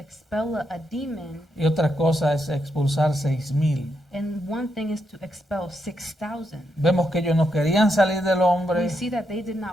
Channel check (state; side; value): normal; both; correlation 0.81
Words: a demon, y otra cosa es expulsar 6,000. and one thing is to expel 6,000. Vemos que ellos no querían salir del hombre, We see that they did